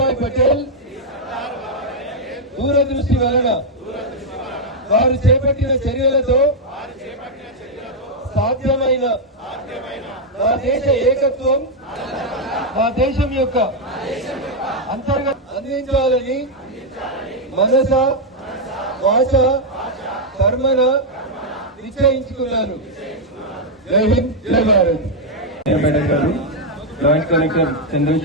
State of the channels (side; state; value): both; normal; correlation -0.01